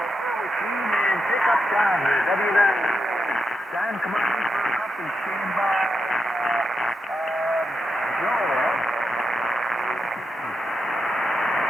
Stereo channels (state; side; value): normal; both; correlation 0.85